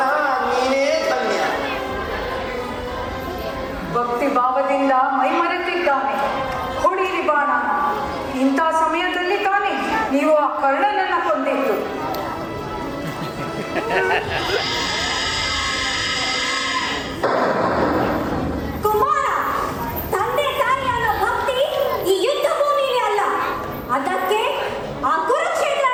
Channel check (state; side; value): identical; both; correlation 1.00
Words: ನೀನೇ ಧನ್ಯ. ಭಕ್ತಿ ಭಾವದಿಂದ ಮೈಮರೆತಿದ್ದಾನೆ. ಹೊಡೀರಿ ಬಾಣ. ಇಂಥ ಸಮಯದಲ್ಲಿ ತಾನೇ ನೀವು ಆ ಕರ್ಣನನ್ನ ಕೊಂದಿದ್ದು. ಕುಮಾರ, ತಂದೆ ತಾಯಿ ಅನ್ನೋ ಭಕ್ತಿ ಈ ಯುದ್ಧ ಭೂಮಿಗೆ ಅಲ್ಲ, ಅದಕ್ಕೆ ಆ